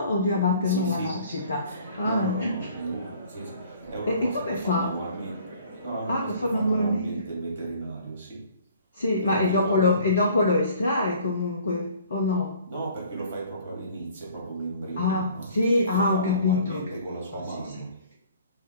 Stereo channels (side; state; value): both; inverted; correlation -0.53